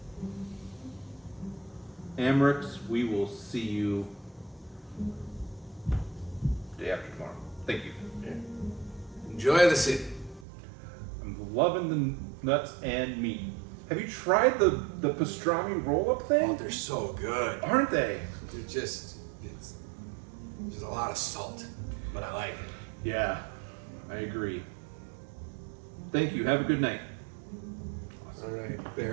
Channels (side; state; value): left; drops out; at 10.5 s